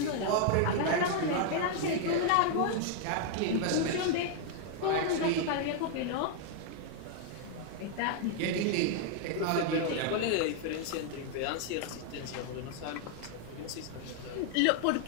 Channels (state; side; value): different; both; correlation 0.00